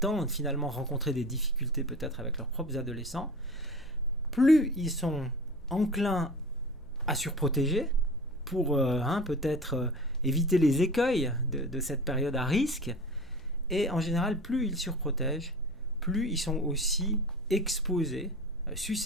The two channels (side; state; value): left; noise; hum, 22 dB below the sound